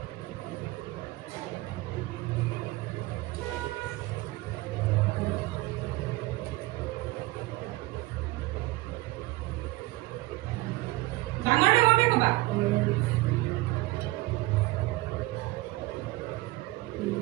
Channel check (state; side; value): quieter; left; 20.0 dB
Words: ডাঙৰ ডাঙৰকে কবা